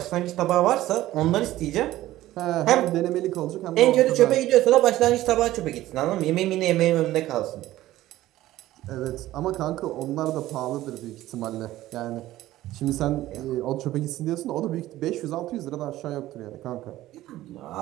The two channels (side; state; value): left; quieter; 15.3 dB